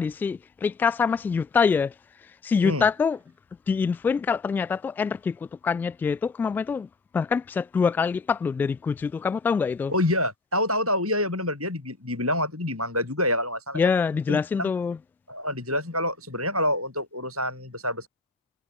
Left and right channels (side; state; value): right; quieter; 3.8 dB